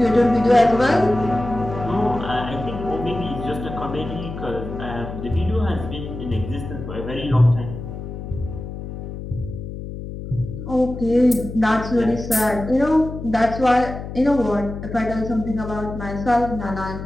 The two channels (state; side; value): noise; left; hum, 9 dB below the sound